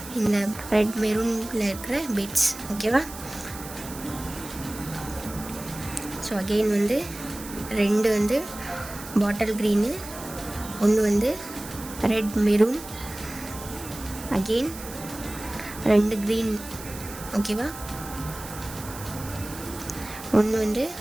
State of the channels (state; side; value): noise; right; hiss, 13 dB below the sound